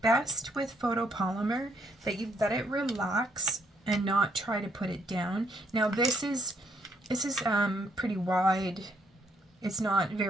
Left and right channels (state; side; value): normal; both; correlation 0.71